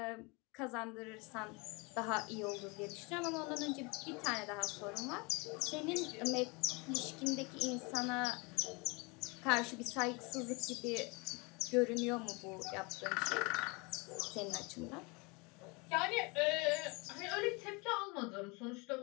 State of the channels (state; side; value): quieter; right; 28.3 dB